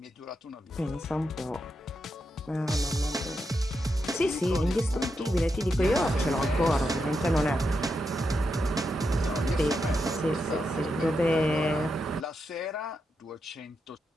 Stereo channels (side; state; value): both; normal; correlation 0.85